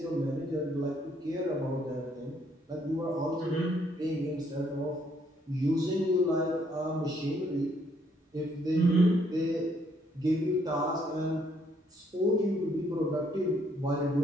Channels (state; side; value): normal; both; correlation 0.69